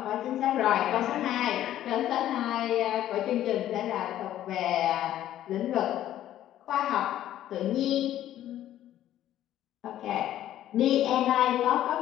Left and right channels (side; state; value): right; quieter; 12.4 dB